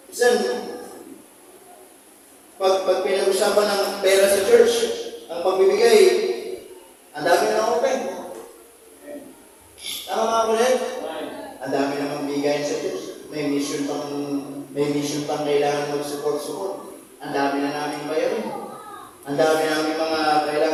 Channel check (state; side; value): identical; both; correlation 1.00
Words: usapan ng pera sa church, ang pagbibigay, ang dami na open. Tama mga kulit? Ang dami namang bigayan sa church. May mission pang kailangan mag-support. Ang dami na namin bayarin. Ang dami namin mga